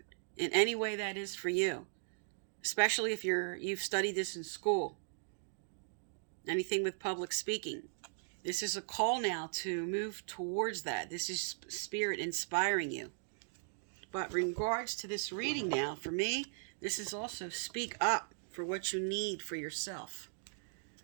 in any way that is for you, especially if you've studied this in school. Anything with public speaking. This is a call now to move towards that. This is Spirit inspiring you. But in regards to this reading now, for me, this is also speak up for what you need for yourself.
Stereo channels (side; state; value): left; silent; digital silence